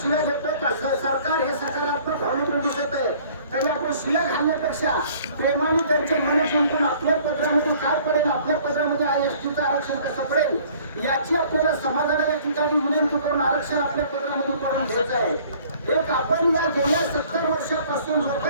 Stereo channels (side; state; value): both; inverted; correlation -0.54